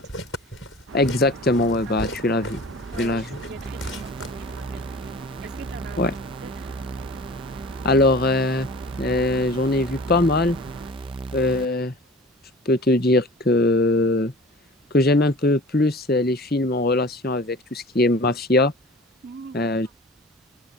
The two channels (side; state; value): both; normal; correlation 0.41